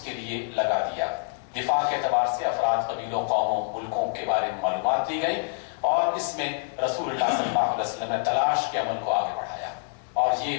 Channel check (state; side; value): silent; right; digital silence